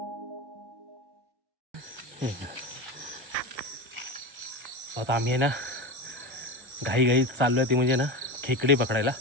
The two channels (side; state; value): left; late; 1.3 ms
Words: आता आम्ही ना घाई चाललोय ते म्हणजे ना खेकडे पकडायला,